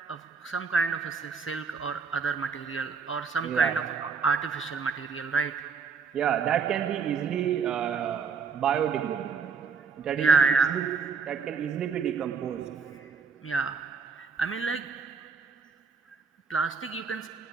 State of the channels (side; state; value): left; quieter; 5.7 dB